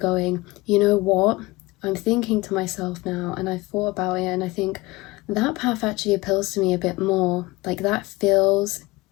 you know what? I'm thinking to myself now, and I've thought about it, and I think that path actually appeals to me a bit more. Like, that feels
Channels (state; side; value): quieter; right; 21.2 dB